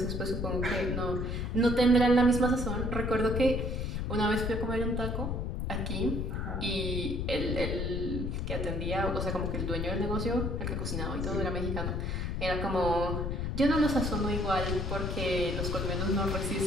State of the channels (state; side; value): noise; left; rumble, 1 dB below the sound